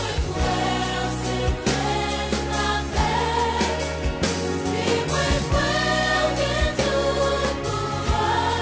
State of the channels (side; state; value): both; identical; correlation 1.00